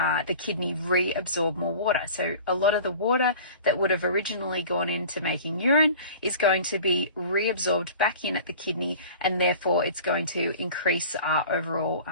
kidney reabsorb more water. So a lot of the water that would have originally gone into making urine is going to be reabsorbed back in at the kidney, and therefore it's going to increase our overall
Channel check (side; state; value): both; inverted; correlation -0.42